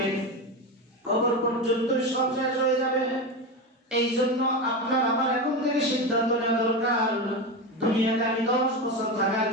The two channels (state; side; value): normal; both; correlation 0.19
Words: কবর পর্যন্ত সব শেষ হয়ে যাবে। এই জন্য আপনার আমার এখন থেকে সিদ্ধান্ত নেওয়া দরকার, দুনিয়াতে আমি 10 বছর থাকার